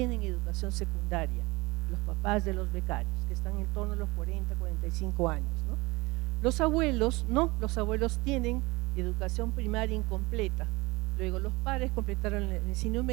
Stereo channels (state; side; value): quieter; left; 23.1 dB